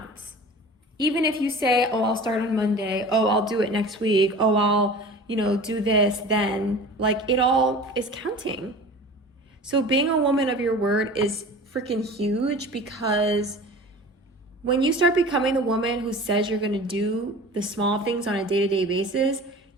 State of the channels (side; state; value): both; normal; correlation 0.39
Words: Even if you say, oh, I'll start on Monday, oh, I'll do it next week, oh, I'll, do this, then like it all is counting. So being a woman of your word is freaking huge, because when you start becoming the woman who says you're going to do the small things on a day-to-day basis,